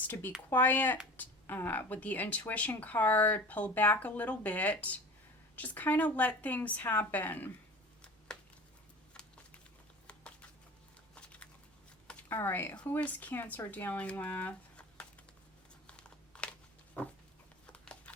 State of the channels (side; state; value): both; normal; correlation 0.37